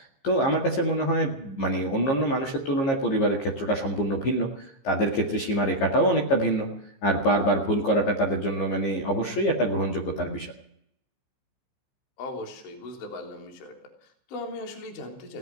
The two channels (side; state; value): right; late; 15 ms